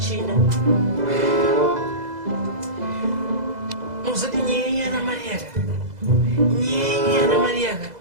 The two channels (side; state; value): left; late; 2.0 ms